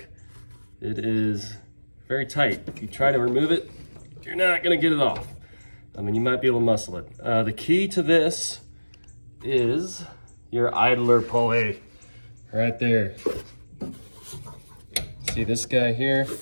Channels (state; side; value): inverted; both; correlation -1.00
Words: It is very tight. If you try to remove it, you're not gonna get it off. I mean, you might be able to muscle it. The key to this is your idler pulley right there. See this guy here?